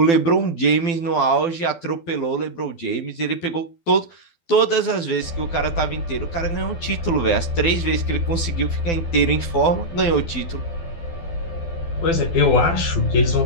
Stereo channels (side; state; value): right; late; 12 ms